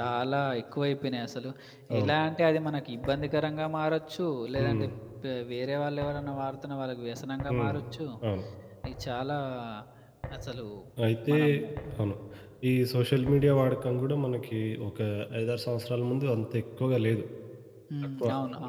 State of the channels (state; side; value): identical; both; correlation 1.00